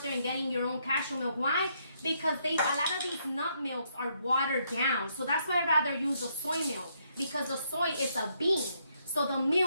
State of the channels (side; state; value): both; inverted; correlation -0.74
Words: there and getting your own cashew milk. Why? Because a lot of these nut milks are watered down. So that's why I'd rather use the soy milk, because the soy is a bean. So the